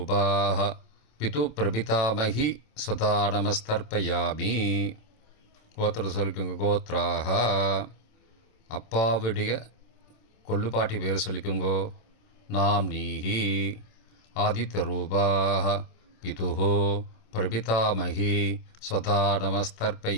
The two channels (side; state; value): right; late; 27 ms